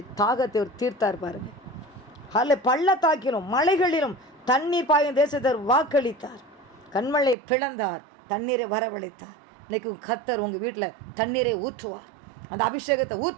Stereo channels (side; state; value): left; drops out; at 7.4 s